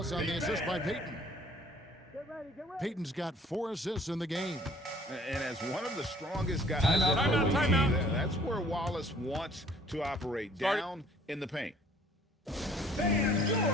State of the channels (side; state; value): both; normal; correlation 0.56